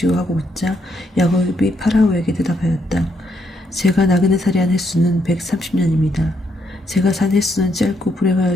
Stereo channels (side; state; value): both; normal; correlation 0.76